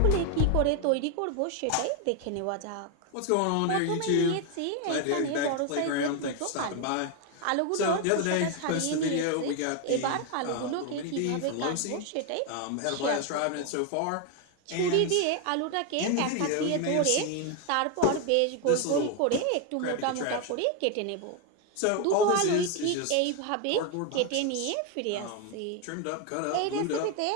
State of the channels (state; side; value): different; both; correlation 0.01